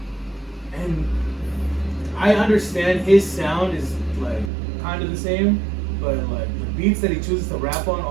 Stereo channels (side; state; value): left; drops out; at 4.5 s